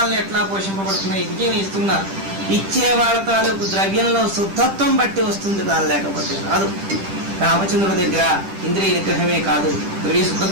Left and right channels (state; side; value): late; left; 10 ms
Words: ఎట్లా పోషింపబడుతున్నాయి? విజయం ఇస్తున్నారు. ఇచ్చే వాళ్ళ తాలూకు ద్రవ్యంలో శుద్ధత్వం బట్టి వస్తుంది, కాదు లేకపోతే రాదు. రామచంద్రుడి దగ్గర ఇంద్రియ నిగ్రహమే కాదు, ద్రవ్య